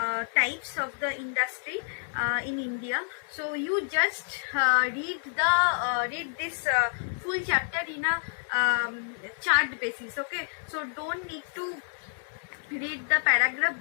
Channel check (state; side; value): silent; right; digital silence